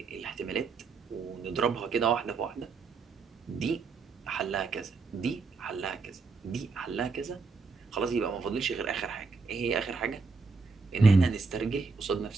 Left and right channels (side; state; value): left; quieter; 4.5 dB